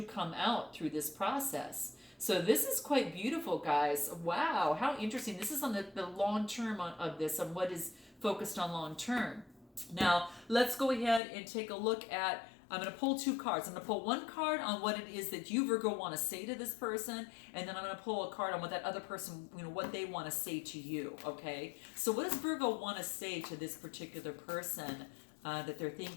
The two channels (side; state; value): right; drops out; at 11.2 s